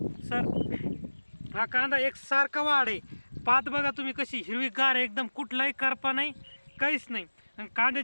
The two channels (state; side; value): inverted; both; correlation -1.00